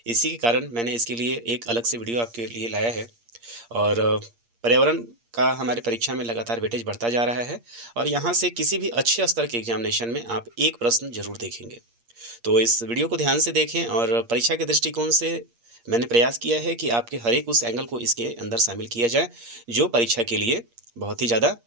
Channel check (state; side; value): late; left; 8.6 ms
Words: इसी के कारण मैंने इसके लिए एक अलग से वीडियो आपके लिए लाया है। और पर्यावरण का हमारे परीक्षा में लगातार वेटेज बढ़ता जा रहा है और यहाँ से किसी भी अच्छे स्तर के एग्जामिनेशन में आप एक प्रश्न जरूर देखेंगे। तो इस वीडियो को ध्यान से देखें और परीक्षा के दृष्टिकोण से मैंने प्रयास किया है कि आपके हर एक उस एंगल को इसके अंदर शामिल किया जाए जो परीक्षा के लिए बहुत ही ज़्यादा